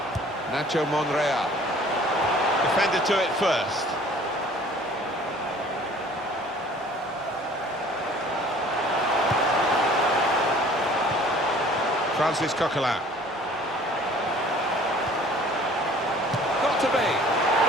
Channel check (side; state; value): both; normal; correlation 0.51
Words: Nacho Monreal. Defender to it first. Francis Coquelin. Got to be.